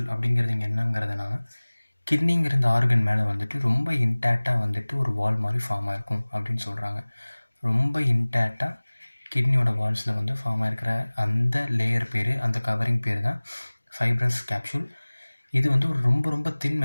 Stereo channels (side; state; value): both; inverted; correlation -1.00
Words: அப்படிங்கிறது இங்கே என்னங்கிறதுனா, கிட்னிங்கிற இந்த ஆர்கன் மேலே வந்துட்டு ரொம்ப இன்டாக்டாக வந்துட்டு ஒரு வால் மாதிரி ஃபார்ம் ஆகிருக்கும் அப்படின்னு சொல்கிறாங்க. ரொம்ப இன்டாக்டாக கிட்னியோட வால்ஸில் வந்து ஃபார்ம் ஆகிருக்கிற அந்த லேயர் பேர், அந்த கவரிங் பேர் தான் ஃபைப்ரஸ் கேப்சூல். இது வந்து ஒரு ரொம்ப ரொம்ப தின்